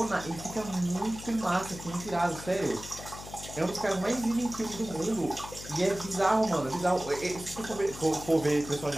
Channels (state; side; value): noise; left; hum, 13 dB below the sound